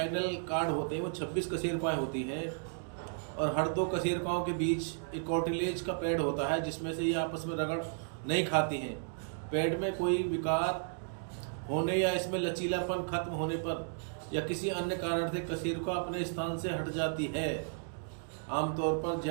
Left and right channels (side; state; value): left; silent; digital silence